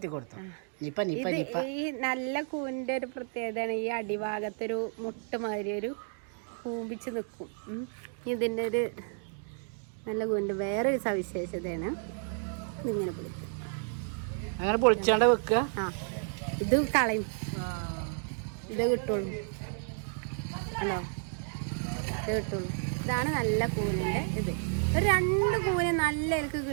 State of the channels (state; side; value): silent; left; 57 dB below the other